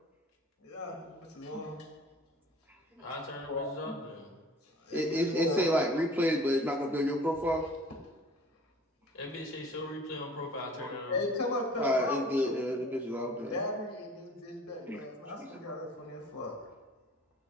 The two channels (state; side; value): normal; both; correlation 0.48